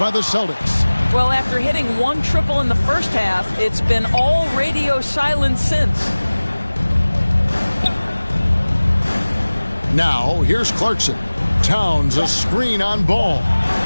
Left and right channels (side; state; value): both; inverted; correlation -1.00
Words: the Celtics. Well, after hitting one triple in the first half, it's been all radio silence since. Now, here's Clarkson. Towns, a screen on Ball.